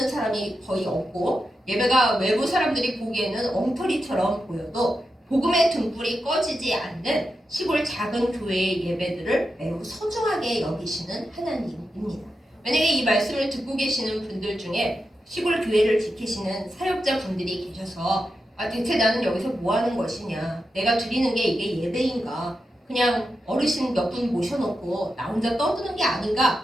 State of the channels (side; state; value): both; normal; correlation 0.88